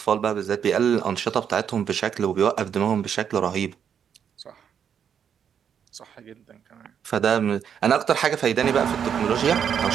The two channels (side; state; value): left; quieter; 8.0 dB